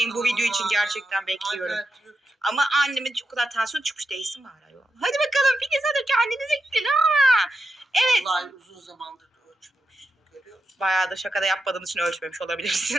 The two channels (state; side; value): normal; both; correlation 0.87